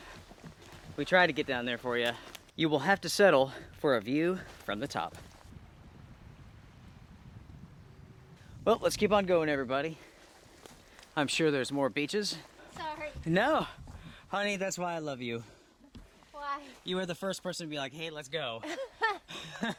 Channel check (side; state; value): both; identical; correlation 1.00